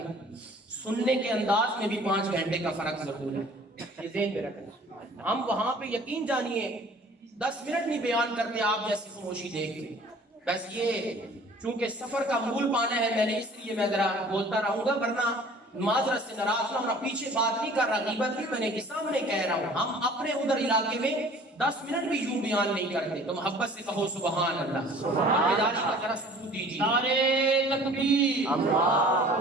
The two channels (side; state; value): both; normal; correlation 0.49